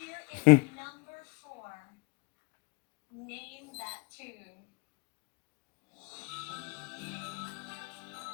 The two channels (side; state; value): right; quieter; 30.0 dB